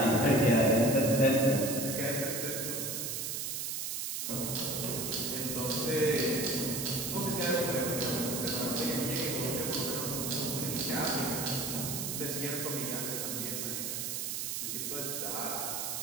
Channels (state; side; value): noise; right; hiss, 3 dB below the sound